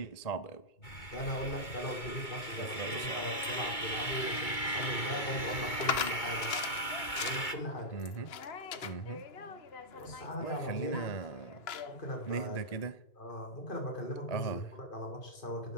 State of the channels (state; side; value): late; right; 2.3 ms